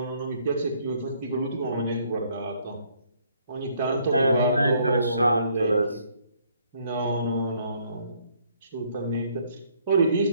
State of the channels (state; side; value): inverted; both; correlation -0.66